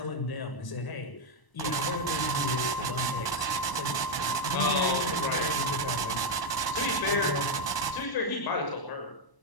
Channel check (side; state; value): right; late; 1.0 ms